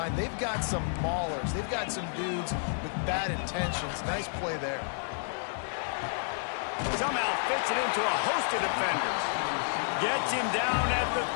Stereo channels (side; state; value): right; silent; 57 dB below the other